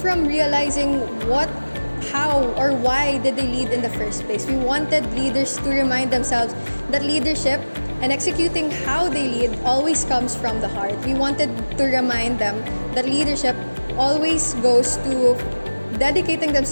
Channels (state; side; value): inverted; both; correlation -1.00